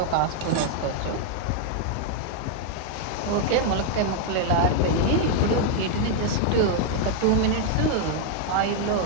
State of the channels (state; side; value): different; both; correlation 0.00